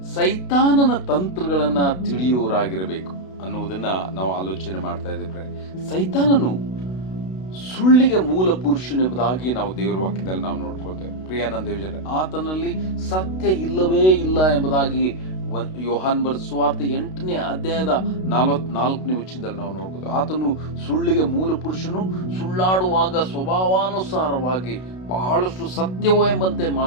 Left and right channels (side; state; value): right; late; 32 ms